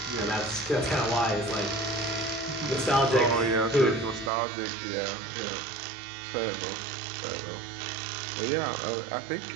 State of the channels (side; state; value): left; drops out; at 4.3 s